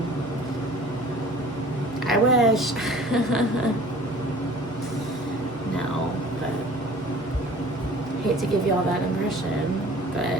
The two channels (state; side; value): normal; both; correlation 0.48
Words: I wish. No, but hate to give you all that impression,